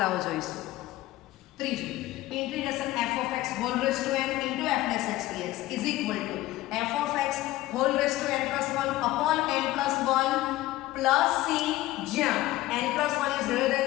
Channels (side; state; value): right; quieter; 16.7 dB